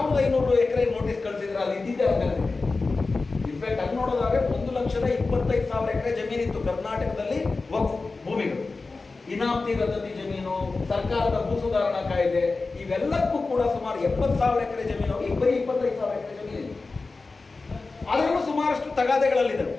ಎಕರೆ ನೋಟಿಸ್ ಕಳಿಸಿದ್ರೆ ಅಲ್ಲಿ ಇದ್ದಿದ್ದೆ ಆಗಲ್ಲ. ಇನ್ಫ್ಯಾಕ್ಟ್ ಅಲ್ಲಿ ನೋಡೋದಾದ್ರೆ 1,25,000 ಎಕರೆ ಜಮೀನಿತ್ತು ಕರ್ನಾಟಕದಲ್ಲಿ ವಕ್ಫ್ ಭೂಮಿಗಳು. ಇನಾಮತಿ ರದ್ದತಿ ಜಮೀನು, ಸರ್ಕಾರದ ಭೂ ಸುಧಾರಣಾ ಕಾಯ್ದೆ, ಇವೆಲ್ಲಕ್ಕೂ ಕೂಡ ಸುಮಾರು 70,000 ಎಕರೆ ಜಮೀನು, ಈಗ ಬರೀ 25,000 ಎಕರೆ ಜಮೀನಿದೆ. ಅದರಲ್ಲೂ ಸುಮಾರಷ್ಟು ತಗಾದೆಗಳಲ್ಲಿದ್ದಾವೆ.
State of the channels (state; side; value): quieter; right; 3.8 dB